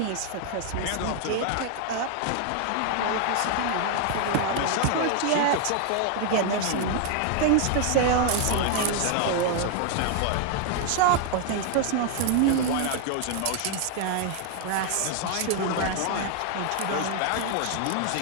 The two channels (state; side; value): different; both; correlation 0.00